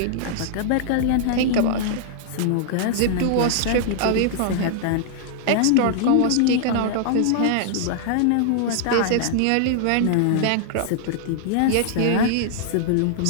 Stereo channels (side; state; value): both; different; correlation -0.01